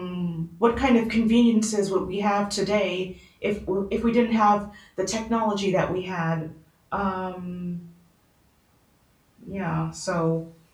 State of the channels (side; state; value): both; identical; correlation 1.00